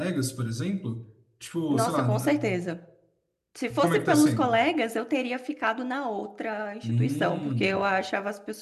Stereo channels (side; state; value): both; identical; correlation 1.00